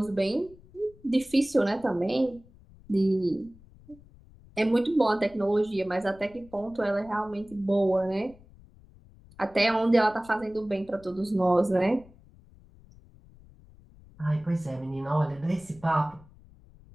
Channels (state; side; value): noise; left; rumble, 24 dB below the sound